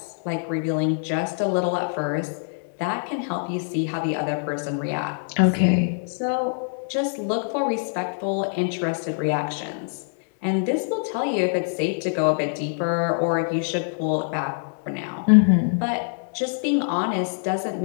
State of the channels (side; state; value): right; silent; digital silence